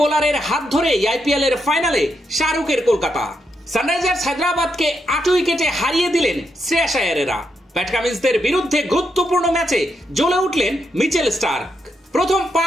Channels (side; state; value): both; normal; correlation 0.81